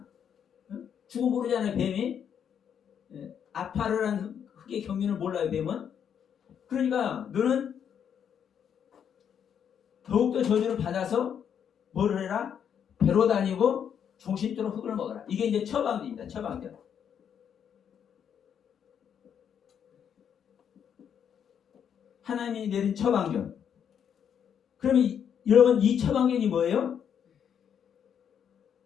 죽음 모르잖아요. 뱀이. 아파르라는 흙의 경륜을 몰라요. 뱀은. 그러니까 너는 더욱더 저주를 받아서 뭐를 해라? 배로 다니고 종신토록 흙을 먹어라. 이게 이제 처방전입니다. 처방전. 하나님이 내린 처방전. 그러면 여러분 이 처방전이 뭐예요?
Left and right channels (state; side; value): quieter; right; 8.3 dB